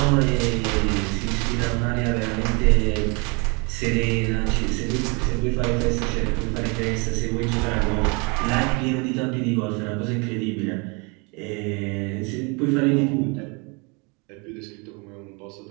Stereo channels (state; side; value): quieter; left; 31.1 dB